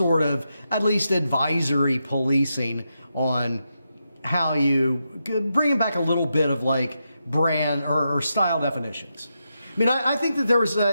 of at least advisory policing on how you bring back a little bit of like brand or style definitions. I mean, I think that there was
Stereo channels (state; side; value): inverted; both; correlation -0.86